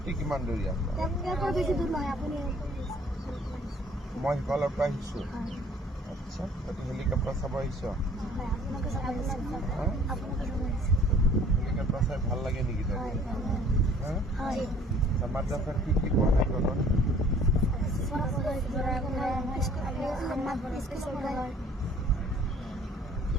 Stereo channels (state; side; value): normal; both; correlation 0.55